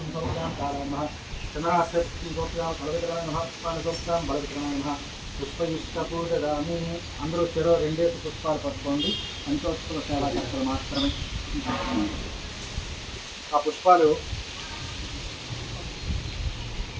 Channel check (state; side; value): identical; both; correlation 1.00